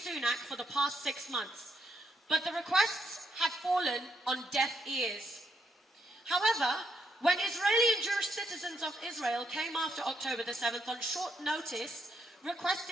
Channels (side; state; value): both; normal; correlation 0.78